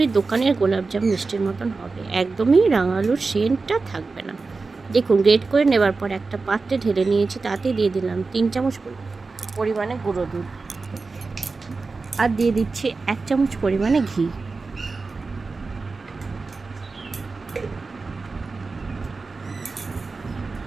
দোকানের গোলাপজাম মিষ্টির মতন হবে, একদমই রাঙা আলুর সেন্টটা থাকবে না। দেখুন, গ্রেট করে নেবার পর একটা পাত্রে ঢেলে নিয়েছি, তাতে দিয়ে দিলাম 3 চামচ পরিমাণে গুঁড়ো দুধ, আর দিয়ে দিচ্ছি 1 চামচ পরিমাণে ঘি।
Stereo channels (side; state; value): left; quieter; 4.1 dB